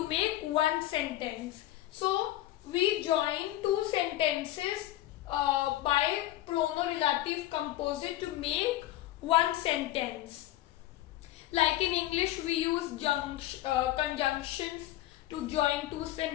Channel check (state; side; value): quieter; right; 14.9 dB